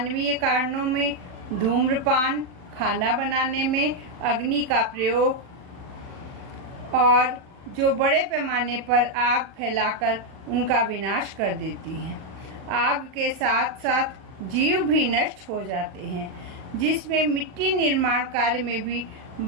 कारणों में धूम्रपान, खाना बनाने में अग्नि का प्रयोग और जो बड़े पैमाने पर आग फैलाकर उनका विनाश कर देती हैं। आग के साथ साथ जीव भी नष्ट हो जाते हैं, जिसमें मिट्टी निर्माण कार्य में भी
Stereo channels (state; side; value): late; left; 39 ms